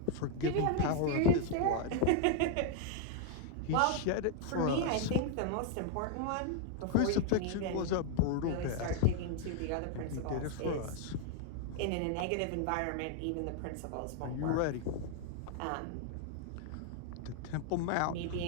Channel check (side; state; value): both; different; correlation 0.00